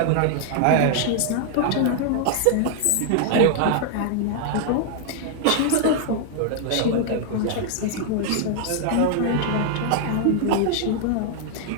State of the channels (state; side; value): different; both; correlation 0.00